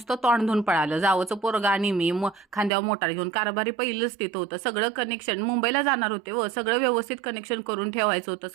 तोंड धुवून पळालं. जावचं पोरगा आणि मी खांद्यावर मोटार घेऊन. कारभारी पहिलंच तिथं होतं. सगळं कनेक्शन मुंबईला जाणार होते व सगळं व्यवस्थित कनेक्शन करून ठेवायचं होतं.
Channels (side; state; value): left; drops out; at 2.7 s